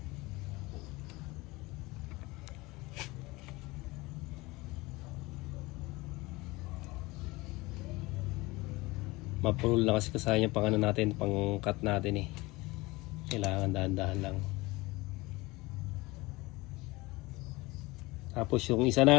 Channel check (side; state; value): right; quieter; 22.1 dB